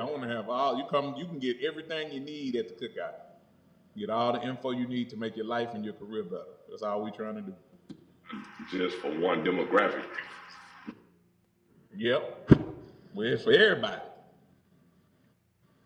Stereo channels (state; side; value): identical; both; correlation 1.00